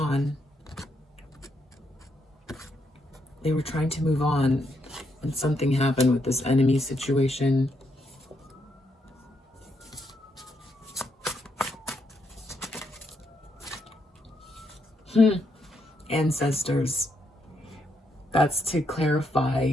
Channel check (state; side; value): normal; both; correlation 0.78